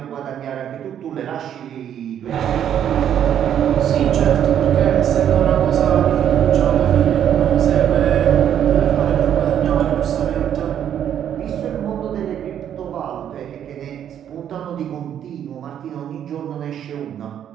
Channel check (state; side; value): quieter; left; 9.7 dB